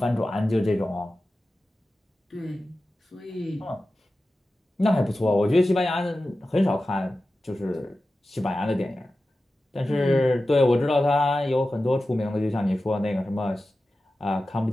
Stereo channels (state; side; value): normal; both; correlation 0.94